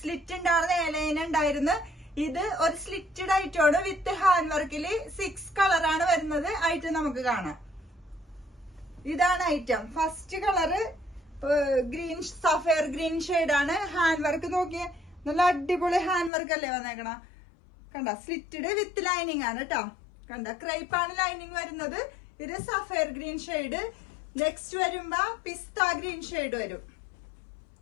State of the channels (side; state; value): right; drops out; at 16.3 s